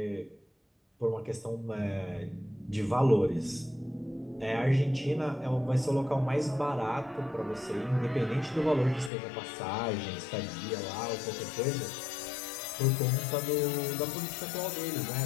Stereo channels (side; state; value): right; drops out; at 9.1 s